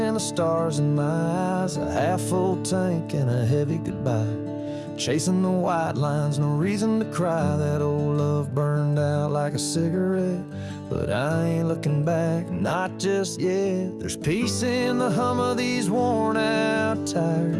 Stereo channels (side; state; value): both; identical; correlation 1.00